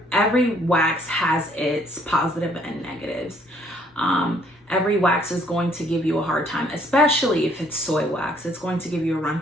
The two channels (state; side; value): normal; both; correlation 0.64